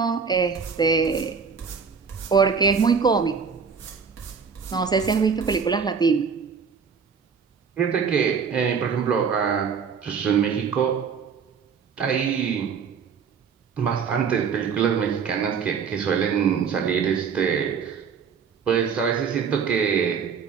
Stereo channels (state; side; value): quieter; left; 6.1 dB